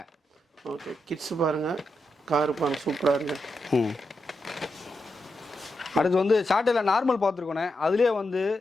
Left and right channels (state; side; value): normal; both; correlation 0.85